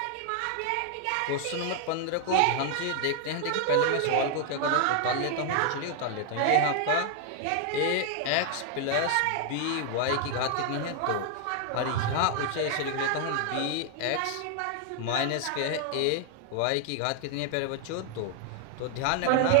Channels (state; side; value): different; both; correlation 0.00